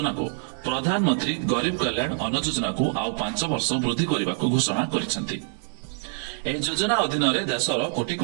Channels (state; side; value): silent; left; 62 dB below the other